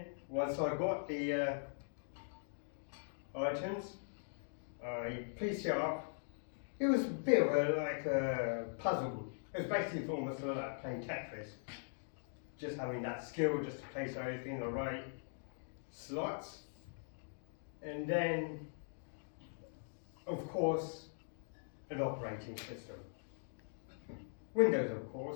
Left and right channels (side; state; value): right; silent; digital silence